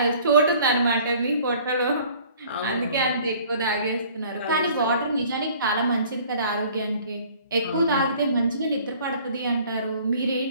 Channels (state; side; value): inverted; both; correlation -0.52